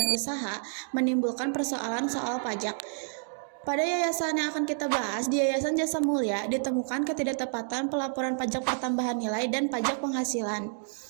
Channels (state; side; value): silent; left; digital silence